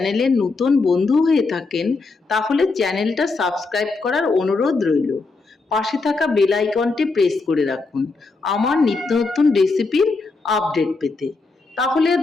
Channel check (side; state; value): right; quieter; 3.8 dB